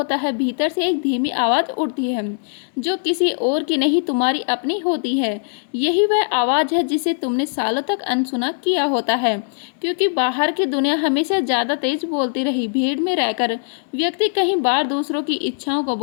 है, भीतर से एक धीमी आवाज़ उठती है जो किसी और की नहीं तुम्हारी अपनी होती है। यही वह आवाज़ है जिसे तुमने सालों तक अनसुना किया होता है, क्योंकि बाहर की दुनिया हमेशा ज़्यादा तेज बोलती रही। भीड़ में रहकर व्यक्ति कई बार दूसरों की इच्छाओं को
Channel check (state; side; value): silent; right; digital silence